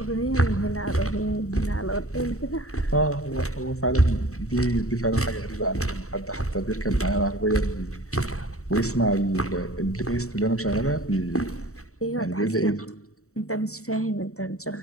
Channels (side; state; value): right; late; 0.64 ms